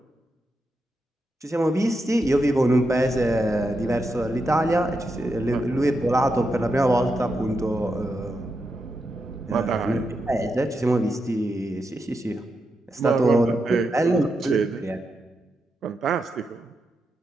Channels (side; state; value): both; normal; correlation 0.86